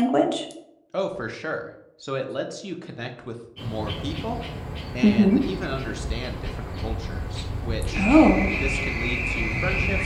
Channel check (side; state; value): both; identical; correlation 1.00